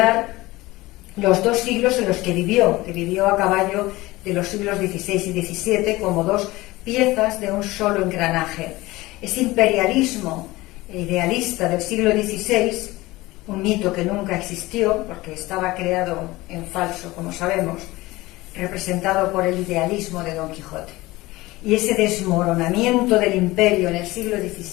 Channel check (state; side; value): quieter; right; 19.8 dB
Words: los dos siglos en los que vivió a caballo de los siglos XVI y XVII como dos piezas de un solo engranaje. Ese imperialismo idealista del siglo XVI, un mito que nunca existió porque estaba creado en falso, como sabemos, representado por el idealismo de Don Quijote. Y ese desmoronamiento del imperio en el siglo